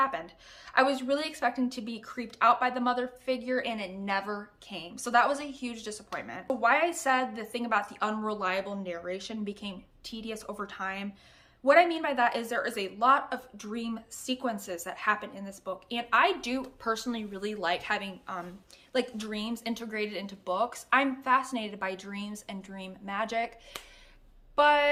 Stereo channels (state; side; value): identical; both; correlation 1.00